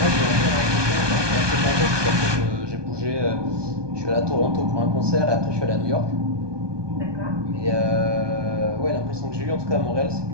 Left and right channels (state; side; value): late; left; 1.2 ms